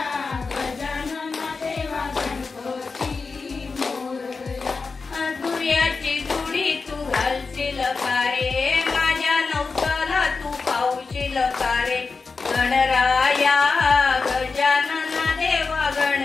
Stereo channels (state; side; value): quieter; right; 4.5 dB